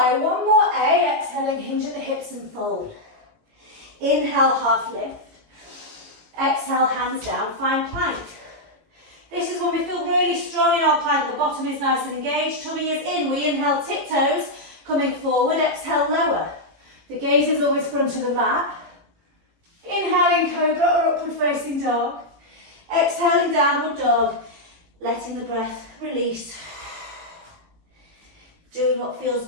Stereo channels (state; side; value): late; left; 18 ms